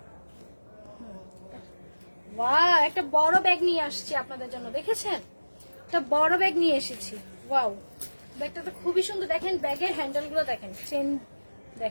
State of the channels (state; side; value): inverted; both; correlation -1.00